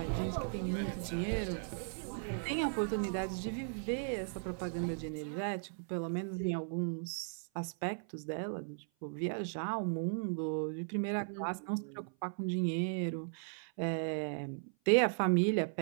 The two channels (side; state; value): left; silent; 53 dB below the other